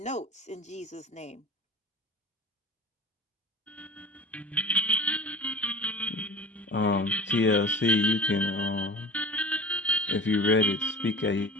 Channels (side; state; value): both; normal; correlation 0.37